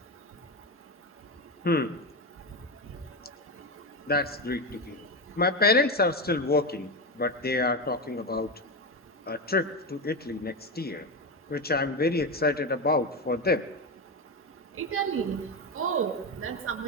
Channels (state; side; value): normal; both; correlation 0.15